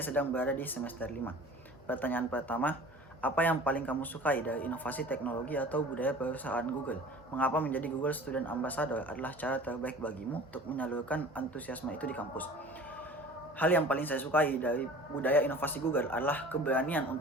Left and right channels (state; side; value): normal; both; correlation 0.43